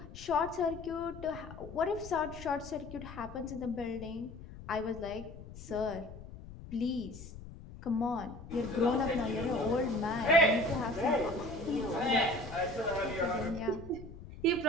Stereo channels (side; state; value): left; noise; rumble, 14 dB below the sound